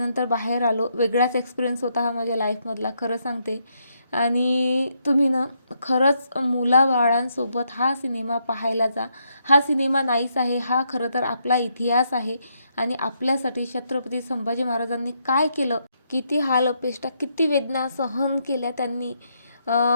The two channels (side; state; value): both; inverted; correlation -0.77